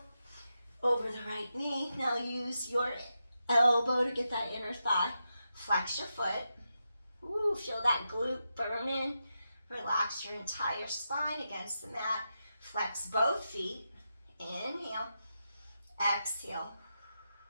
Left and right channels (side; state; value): both; inverted; correlation -0.88